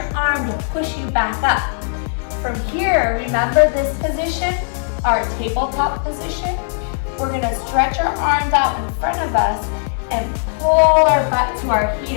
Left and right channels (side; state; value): right; silent; 67 dB below the other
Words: arm to push you back up. From here, remember this position, our tabletop position. We're gonna stretch our arms out in front of us and pull our butt to our